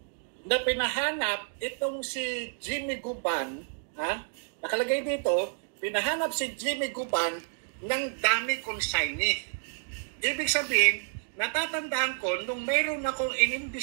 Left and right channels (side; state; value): left; silent; 58 dB below the other